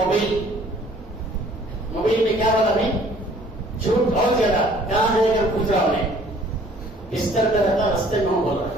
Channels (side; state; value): both; normal; correlation 0.56